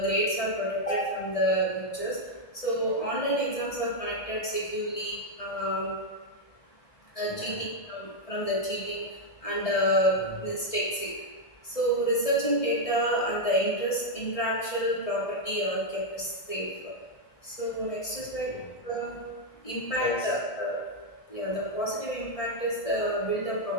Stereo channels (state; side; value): late; right; 1.6 ms